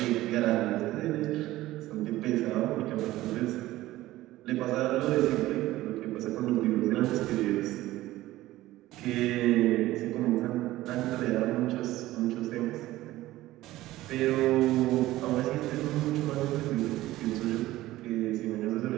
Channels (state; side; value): quieter; left; 16.4 dB